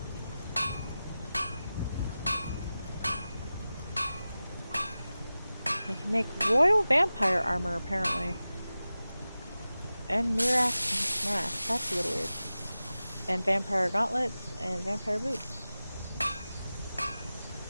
They can make royal vampire armor apparently. And Mirax mask. That's a little weird. And vampire gauntlets and vampire boots.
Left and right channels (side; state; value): both; inverted; correlation -0.95